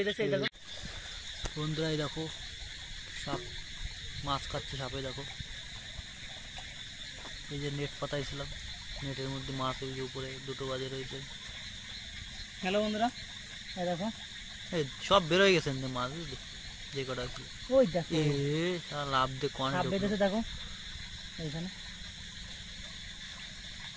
এই দেখো বন্ধুরা, এই দেখো সাপ মাছ খাচ্ছে। সাপে দেখো, এই যে নেট পাতাইছিলাম, নেটের মধ্যে মাছ ওই যে উপরে দুটো বাজে রয়েছে। হ্যালো বন্ধুরা, এই দেখো এই সব বেরোয় গেছেন মাছ, বুঝলি যে কটা ছিল। ওই দেখো লাভ দিয়ে কন সাপ বেঁধেছে দেখো এইখানে।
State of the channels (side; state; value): both; identical; correlation 1.00